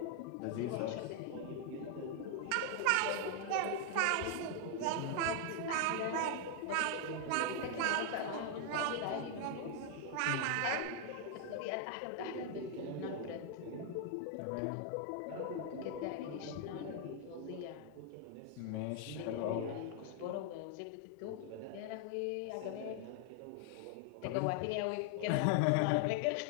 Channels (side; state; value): both; different; correlation 0.00